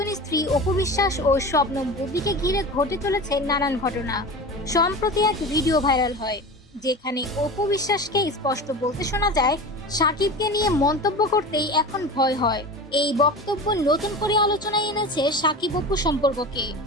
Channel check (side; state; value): both; normal; correlation 0.31